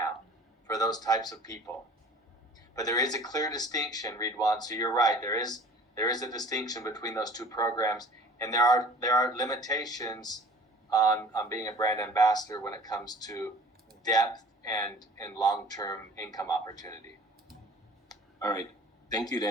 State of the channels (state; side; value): normal; both; correlation 0.47